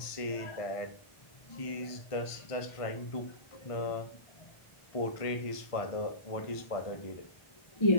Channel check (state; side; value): late; right; 1.5 ms